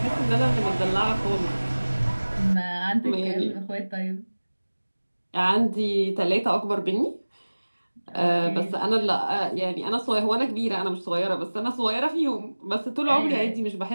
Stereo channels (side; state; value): both; inverted; correlation -1.00